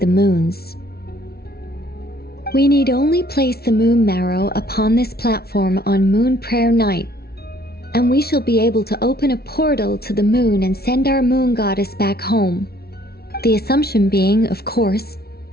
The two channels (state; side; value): late; right; 0.45 ms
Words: moons. We need only place the moon marrow upon this platform on Moon Prayer Night, and we shall be able to open a portal to the moon and send our moon goddess back home. The assumption being, of course,